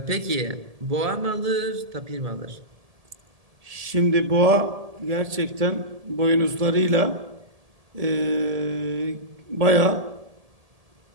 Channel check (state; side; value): late; left; 1.7 ms